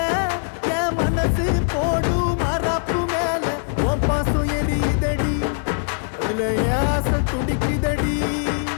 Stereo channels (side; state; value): right; silent; digital silence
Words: என் மனசு போடு மரப்பு மேல உன் பாசம் எரியுதடி அதுல ஏச துடிக்குதடி